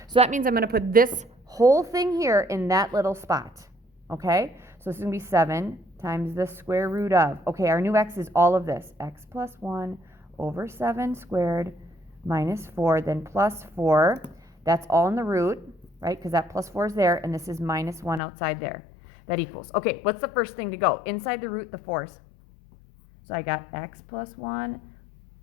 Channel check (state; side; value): drops out; right; at 18.2 s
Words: So that means I'm going to put this whole thing here in that little spot, okay? So this is going to be 7 times the square root of, okay, our new x is all of this, x plus 1 over 7 squared minus 4, then plus 4. That's all in the root, right, because that plus 4 is there, and this is minus 1 outside there. That equals, okay, what's the first thing to go? Inside the root, the 4's. So I got x plus 1